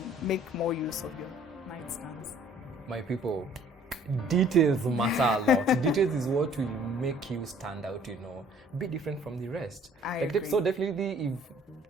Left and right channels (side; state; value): both; normal; correlation 0.56